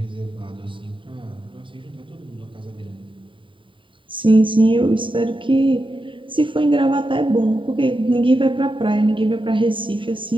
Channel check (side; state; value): left; late; 0.25 ms